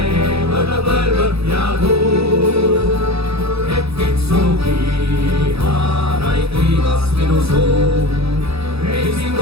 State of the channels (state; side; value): late; left; 0.78 ms